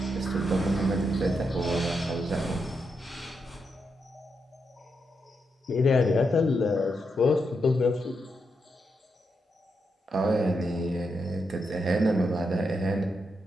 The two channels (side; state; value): both; normal; correlation 0.83